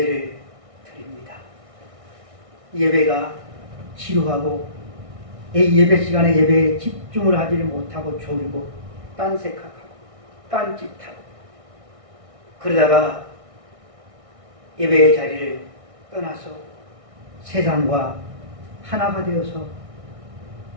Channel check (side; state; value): left; late; 1.6 ms